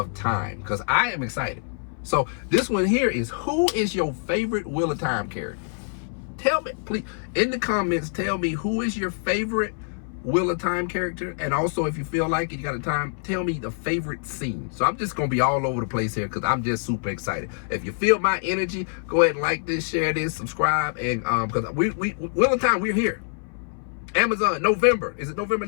Time, because I am excited. So this one here is, who is your favorite Wheel of Time character? Tell me, please, in the comments, tell me who is your favorite Wheel of Time character. And also, if you feel like it, you got a time, tell me the favorite scene. So I'm just going to be all over the place here because I'm just super excited. If you feel my energy, go ahead and like this, share this, subscribe. And because we Wheel of Time, we're here. Amazon, November. Is it November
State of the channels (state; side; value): silent; right; 60 dB below the other